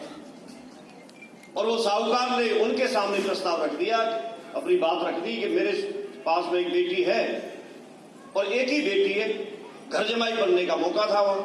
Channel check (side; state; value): both; identical; correlation 1.00